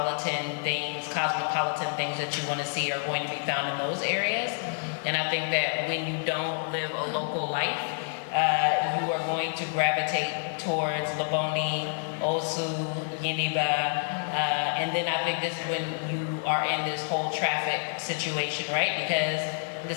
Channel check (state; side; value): silent; right; digital silence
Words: things, cosmopolitan things that you want to see are going to be found in those areas. And I think that when you don't live a local life, you are going to gravitate towards Laboni, Osu, Yeniba, and then I think this is when you are in this whole traffic situation, right? Because